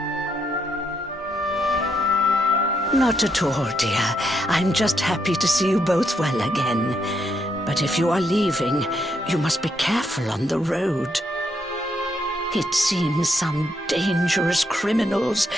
Not at all, dear. I'm just happy to see you both well again. But if you are leaving, you must be careful on the road. It seems some dangerous criminals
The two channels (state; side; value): normal; both; correlation 0.77